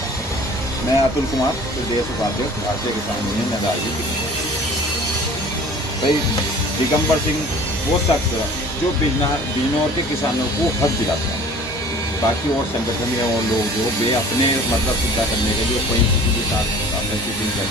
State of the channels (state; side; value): normal; both; correlation 0.46